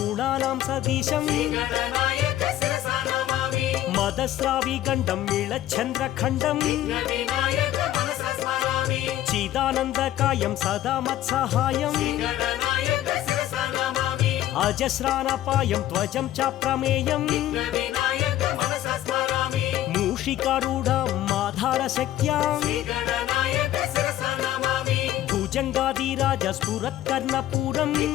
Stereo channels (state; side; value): quieter; right; 13.2 dB